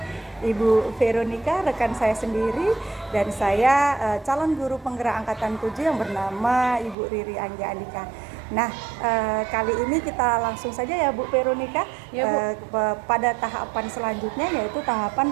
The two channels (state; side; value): drops out; left; at 7.0 s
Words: Ibu Veronica, rekan saya sendiri, dan saya calon guru penggerak angkatan 7 yang bernama Ibu Riri Anggia Andika. Nah, kali ini kita langsung saja ya Bu Veronica, Ya, Bu. pada tahapan selanjutnya, yaitu tahapan